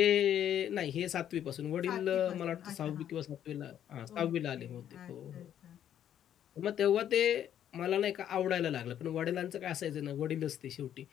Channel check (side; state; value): right; quieter; 10.3 dB